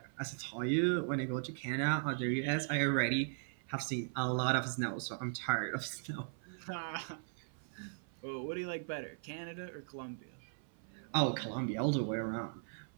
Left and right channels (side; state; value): left; silent; 52 dB below the other